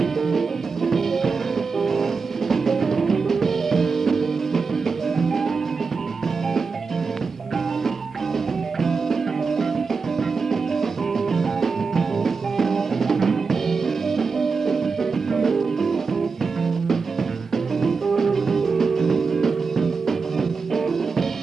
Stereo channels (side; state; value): left; quieter; 4.8 dB